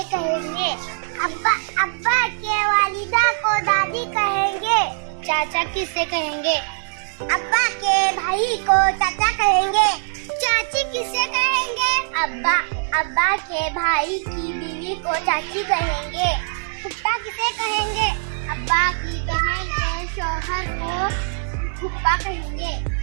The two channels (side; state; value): left; silent; 64 dB below the other